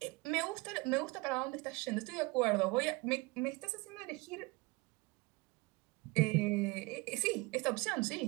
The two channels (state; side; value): quieter; left; 25.0 dB